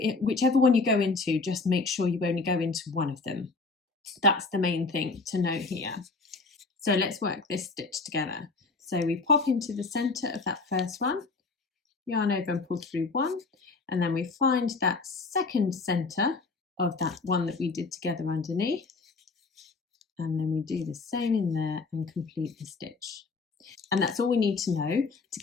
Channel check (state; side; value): quieter; right; 4.0 dB